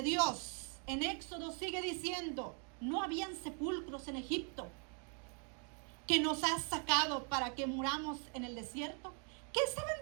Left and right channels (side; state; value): left; quieter; 39.6 dB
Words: Dios. En Éxodo sigue diciendo, no habían sepulcros en Egipto que nos has sacado para que muramos en el desierto. ¿Qué estaban